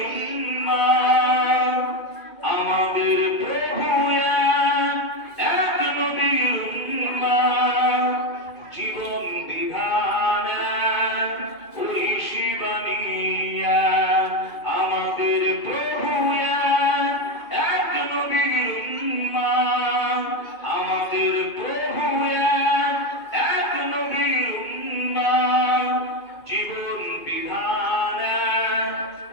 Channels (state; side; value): late; right; 2.5 ms